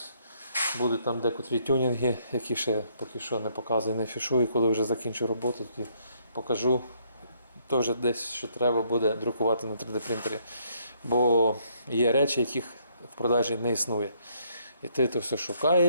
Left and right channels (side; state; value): both; inverted; correlation -0.69